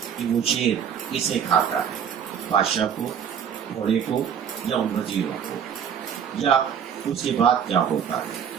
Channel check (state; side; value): quieter; left; 8.1 dB